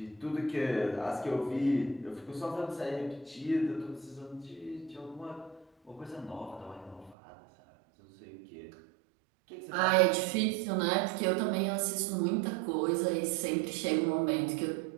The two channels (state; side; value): drops out; left; at 7.2 s